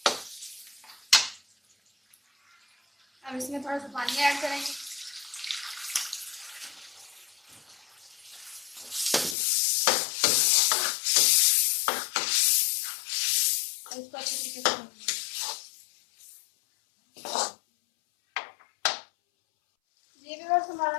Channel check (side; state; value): right; drops out; at 9.3 s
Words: अब इसमें थोड़ा सा पानी ऐड करेंगे। और इसको अच्छे तरीके से भूनेंगे। ये भी बस हमारा